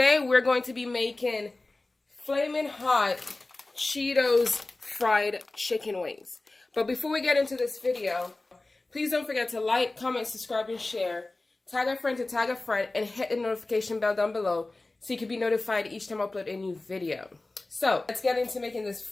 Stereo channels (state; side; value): quieter; right; 3.0 dB